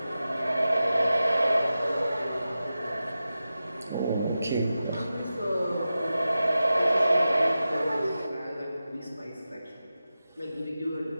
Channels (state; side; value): inverted; both; correlation -0.93